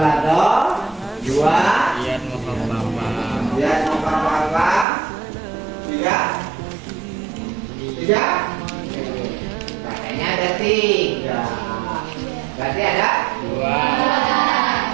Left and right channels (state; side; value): drops out; left; at 4.9 s